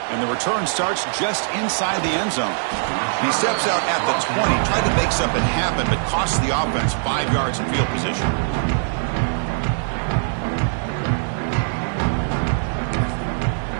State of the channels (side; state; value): left; silent; 59 dB below the other